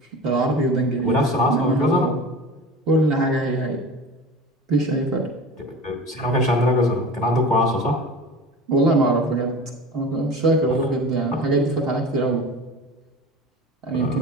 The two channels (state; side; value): normal; both; correlation 0.35